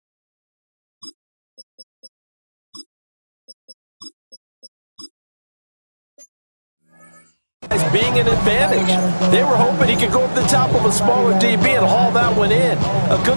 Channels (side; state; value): both; inverted; correlation -1.00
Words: As being an advantage. They were hoping he could go up the top of a smaller DB and haul that one in. A